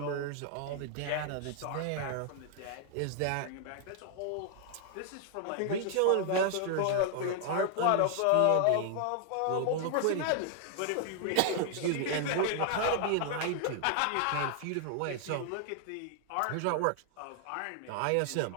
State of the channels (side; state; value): both; different; correlation 0.00